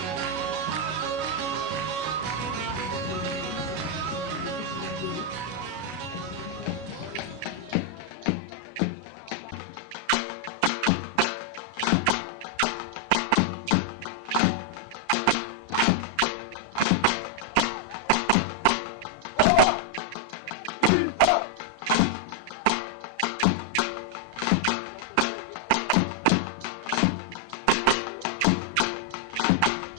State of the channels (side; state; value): left; late; 33 ms